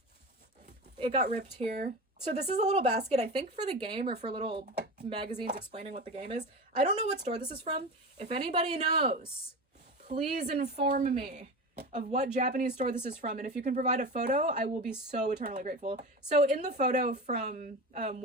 it got ripped here. So this is a little basket, I think for the game or for little magazines explaining what the game is. I don't know what store this is from. If anybody knows, please inform me of what Japanese store this is from. And if you can provide a photo, I will be so eternally grateful. So in the photo from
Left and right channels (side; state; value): both; normal; correlation 0.27